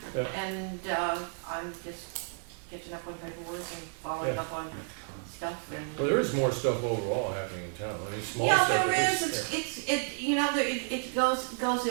Yeah. and I'm just catching up on paperwork and following Yeah. up on stuff and. Well, there is more stuff overall happening in town. I mean, small Yeah, stuff. there but is, it goes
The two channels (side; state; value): left; silent; 57 dB below the other